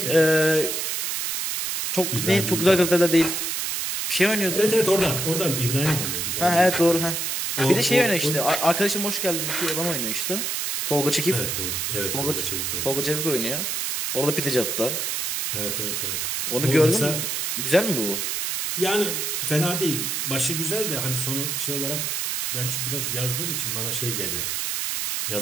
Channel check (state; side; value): noise; right; hiss, 1 dB below the sound